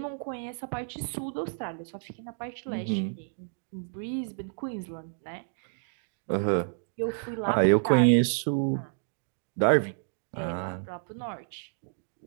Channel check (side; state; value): left; silent; digital silence